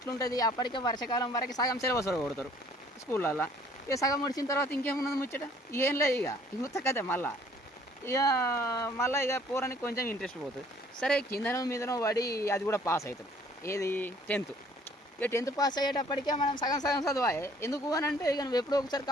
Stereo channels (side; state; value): both; normal; correlation 0.58